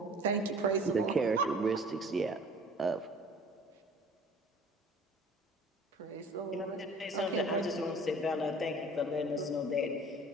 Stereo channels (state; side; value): normal; both; correlation 0.48